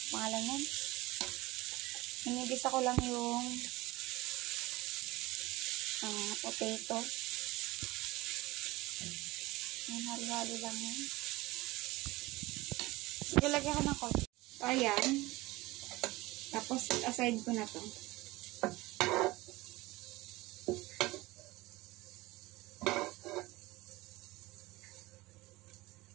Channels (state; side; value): quieter; left; 20.2 dB